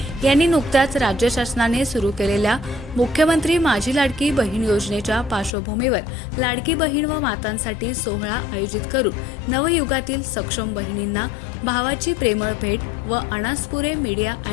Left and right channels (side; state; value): right; drops out; at 5.5 s